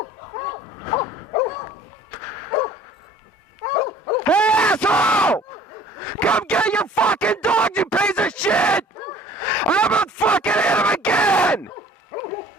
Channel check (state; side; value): normal; both; correlation 0.51